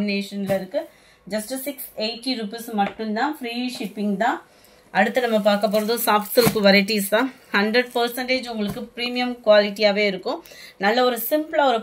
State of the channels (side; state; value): both; identical; correlation 1.00